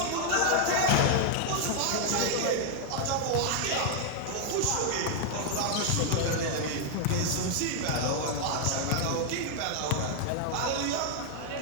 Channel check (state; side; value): different; both; correlation 0.00